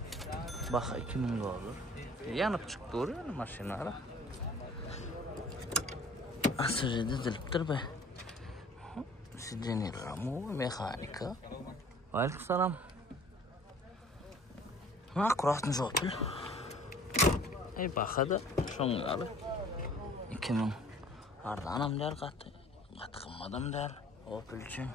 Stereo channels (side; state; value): both; normal; correlation 0.51